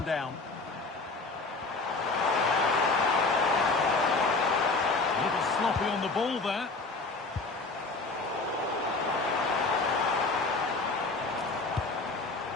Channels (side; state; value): right; quieter; 3.6 dB